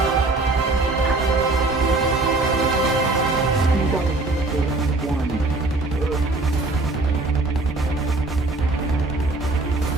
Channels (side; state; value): left; quieter; 3.2 dB